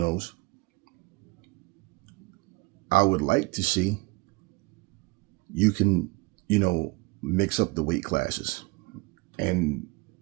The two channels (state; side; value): quieter; left; 25.0 dB